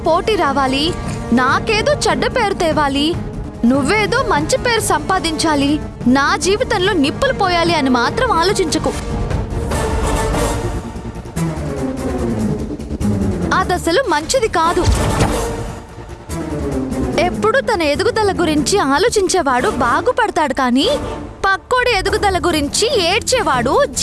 పోటీ రావాలి, నాకేదో చెడ్డ పేరు తేవాలి, నువ్వేదో మంచి పేరు సంపాదించాలి, నా జీవితంలో నిప్పులు పోయాలి అని మాత్రం ఆలోచించకు. అదసలు మంచిది కాదు. ఎప్పుడు తన ఎదుగుదల గురించి ఆలోచించేవాడు బాగుపడతాడు, కానీ పక్కోడి ఎదుగుదల గురించి ఏడ్చేవాడు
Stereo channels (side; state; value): both; identical; correlation 1.00